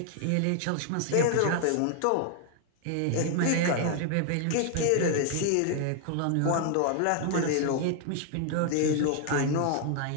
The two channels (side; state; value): both; different; correlation 0.00